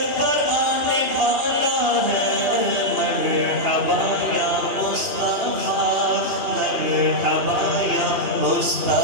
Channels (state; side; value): late; left; 2.8 ms